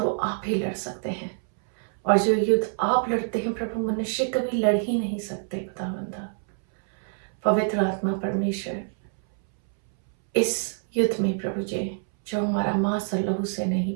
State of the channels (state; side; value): silent; left; 61 dB below the other